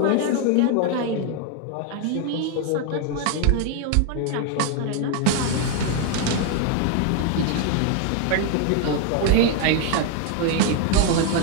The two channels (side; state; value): both; different; correlation 0.01